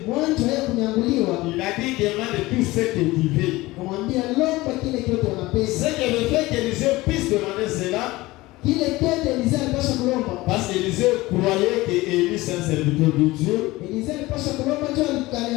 il a dit demande tout ce que tu veux. Ce qui veut faire qu'Élisée puisse demander cela. Parce qu'Élisée croyait que Élie c'est un serviteur de Dieu. Élie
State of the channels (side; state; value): right; quieter; 19.8 dB